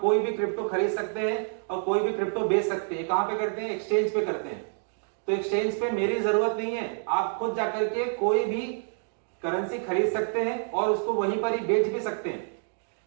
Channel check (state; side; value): silent; left; 60 dB below the other